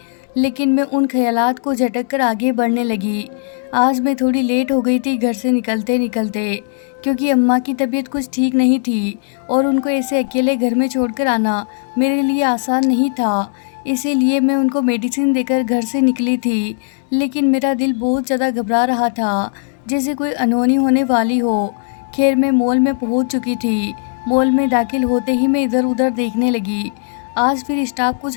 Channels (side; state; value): right; silent; digital silence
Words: लेकिन मैं उन ख्यालात को झटक कर आगे बढ़ने लगी। आज मैं थोड़ी लेट हो गई थी घर से निकलते निकलते, क्योंकि अम्मा की तबीयत कुछ ठीक नहीं थी और उनको ऐसे अकेले घर में छोड़कर आना मेरे लिए आसान नहीं था। इसीलिए मैं उनको मेडिसिन देकर घर से निकली थी, लेकिन मेरा दिल बहुत ज़्यादा घबरा रहा था, जैसे कोई अनहोनी होने वाली हो। खैर मैं मॉल में पहुंच चुकी थी। मॉल में दाखिल होते ही मैं इधर उधर देखने लगी। आज फिर स्टाफ